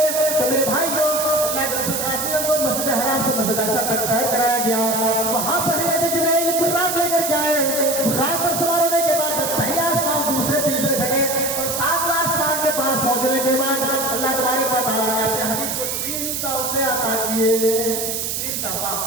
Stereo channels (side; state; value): right; noise; hiss, 2 dB below the sound